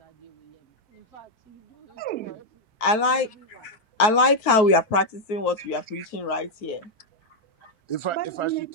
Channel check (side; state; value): right; late; 4.6 ms